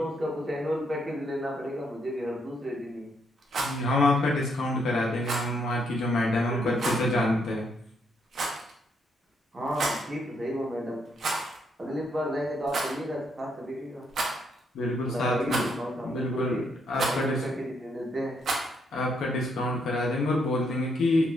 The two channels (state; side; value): normal; both; correlation 0.75